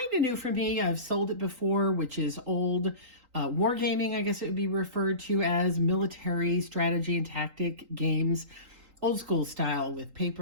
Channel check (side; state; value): left; late; 3.8 ms